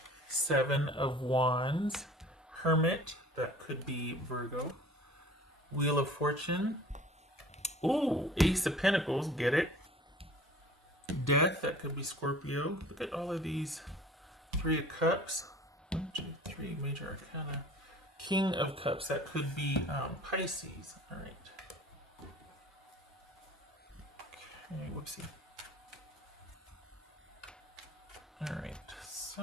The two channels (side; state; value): both; normal; correlation 0.47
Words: Seven of Wands. Hermit, that could be Virgo. Wheel of Fortune. Ooh, Ace of Pentacles, get it. Death, that could be Scorpio. Look at all of these. Three of Cups. 1, 2, 3, major arcana. King of Cups, that could be Pisces. All right. Okay, whoopsie. All right,